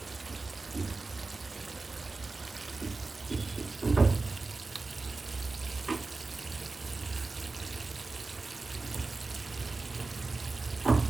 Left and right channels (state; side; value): quieter; left; 3.6 dB